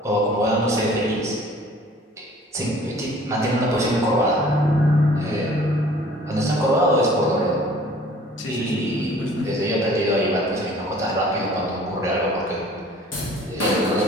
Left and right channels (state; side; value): normal; both; correlation 0.51